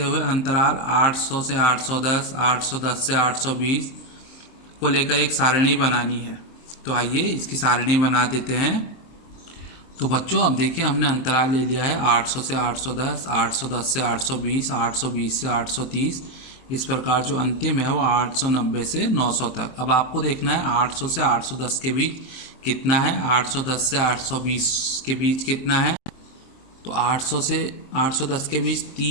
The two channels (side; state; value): right; late; 23 ms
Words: हुए अंतराल 800 से 810, 810 से 820 को लेकर एक सारणी बनानी है। तो आइए इसकी सारणी बना देते हैं। तो बच्चों, अब देखिए, हमने अंतराल ले लिया है 800 से 810, 810 से 820, 820 से 830। इस प्रकार जो अंतिम है वो 890 से 900 तक। अब आपको देखना है 800 से 810 के बीच कितना है, 810 से 820 के बीच कितना है। तो 800 से 810 के बीच